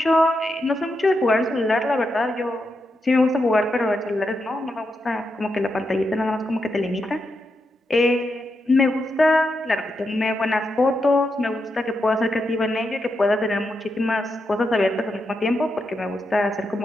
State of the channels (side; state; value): both; normal; correlation 0.85